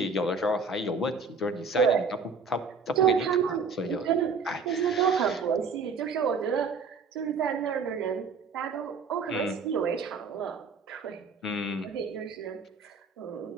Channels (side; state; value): left; quieter; 4.7 dB